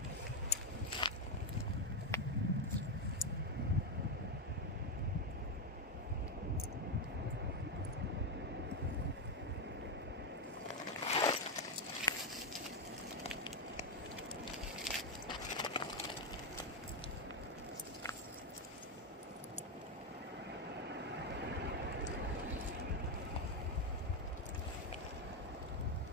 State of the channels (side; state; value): both; normal; correlation 0.06